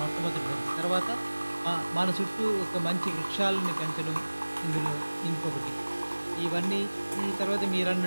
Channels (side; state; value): both; inverted; correlation -1.00